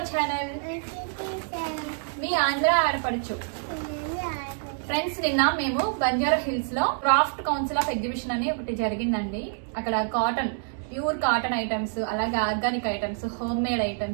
channel. మీ ఆంధ్ర ఆడపడుచు friends. నిన్న మేము బంజారా హిల్స్ లో క్రాఫ్ట్ కౌన్సిల్ ఆఫ్ ఎగ్జిబిషన్ అని ఒకటి జరిగిందండి. అక్కడ కాటన్, ప్యూర్ కాటన్ ఐటమ్స్, అలాగే organic items, home made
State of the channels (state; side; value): silent; left; digital silence